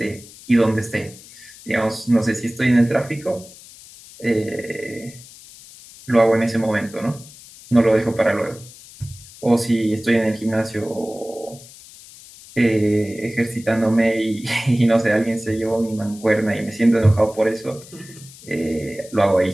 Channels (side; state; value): left; noise; hiss, 20 dB below the sound